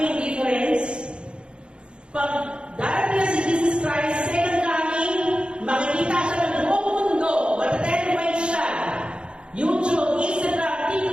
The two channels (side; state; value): left; late; 0.055 ms